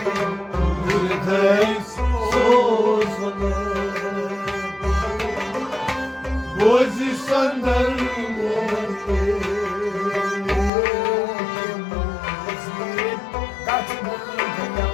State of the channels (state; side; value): drops out; right; at 10.7 s